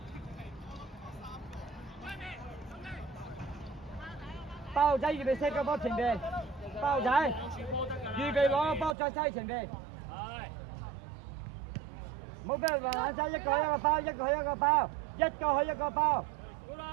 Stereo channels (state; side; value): drops out; left; at 9.0 s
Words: 包仔預備 set 個波前邊，包仔預備攞個波再西前邊。唔好俾人話眼一個包，一個一個包。一個去一個包，